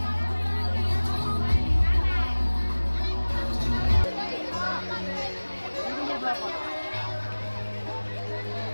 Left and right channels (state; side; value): inverted; both; correlation -1.00